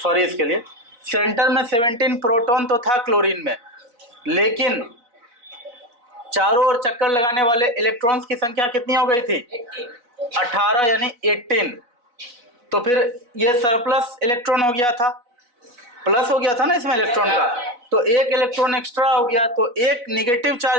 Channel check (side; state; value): left; late; 4.1 ms